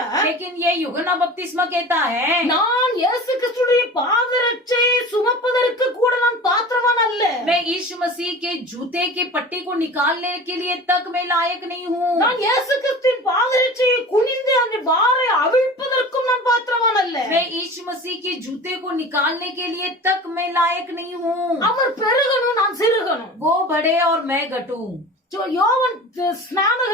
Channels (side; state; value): both; normal; correlation 0.37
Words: लेकिन ये यूहन्ना बपतिस्मा कहता है, நான் இயேசு கிறிஸ்துடைய பாதரட்சையை சுமப்பதற்கு கூட நான் பாத்திரவான் அல்ல. मैं यीशु मसीह के जूते के पट्टी को निकालने के लिए तक मैं लायक नहीं हूँ, நான் இயேசு கிறிஸ்துவின் பாதரட்சையை குனிந்து அந்த வாரை அவிழ்ப்பதற்கும் நான் பாத்திரவான் அல்ல. मैं यीशु मसीह के जूते को निकालने के लिए तक मैं लायक नहीं हूँ, அவர் பெருகணும், நான் சிறுகணும். वो बढ़े और मैं घटूं। யோவான்